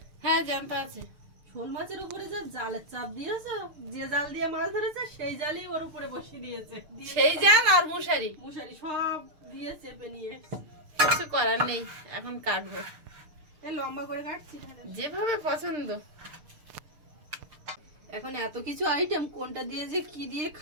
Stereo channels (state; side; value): late; left; 6.6 ms